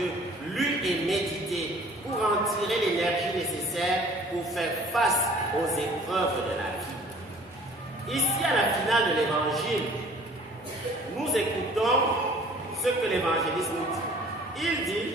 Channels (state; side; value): normal; both; correlation 0.51